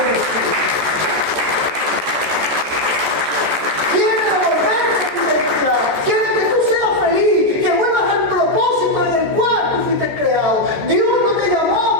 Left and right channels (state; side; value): late; left; 14 ms